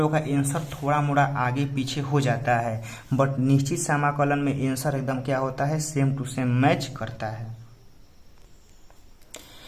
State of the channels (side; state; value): both; identical; correlation 1.00